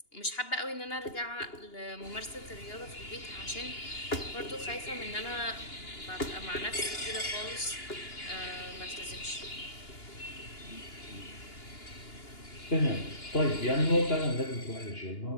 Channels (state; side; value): late; right; 2.9 ms